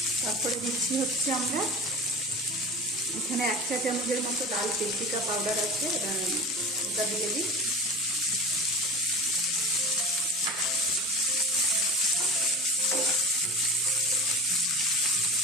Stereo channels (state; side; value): normal; both; correlation 0.34